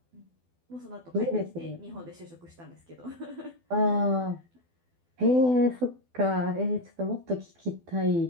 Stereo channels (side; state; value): left; late; 12 ms